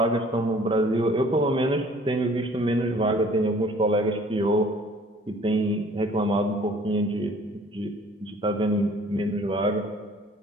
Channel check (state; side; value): normal; both; correlation 0.54